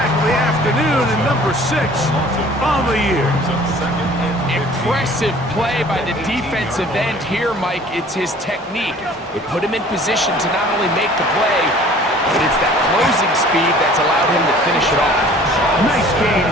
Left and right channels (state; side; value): normal; both; correlation 0.50